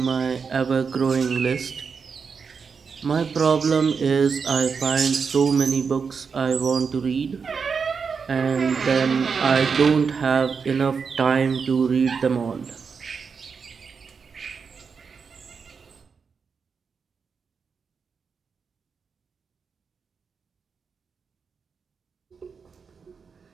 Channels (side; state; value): left; quieter; 5.7 dB